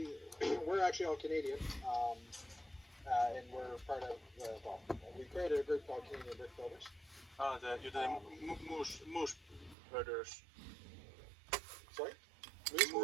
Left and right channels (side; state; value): left; drops out; at 9.8 s